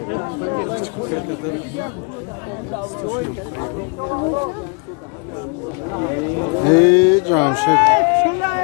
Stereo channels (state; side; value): quieter; right; 33.9 dB